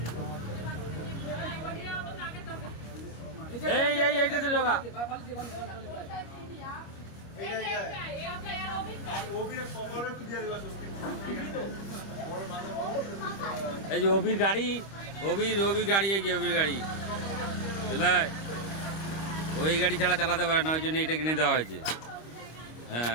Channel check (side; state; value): right; late; 25 ms